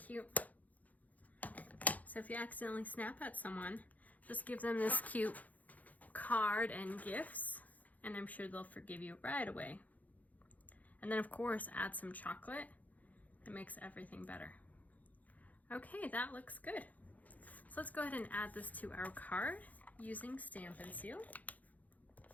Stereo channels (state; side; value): late; right; 0.077 ms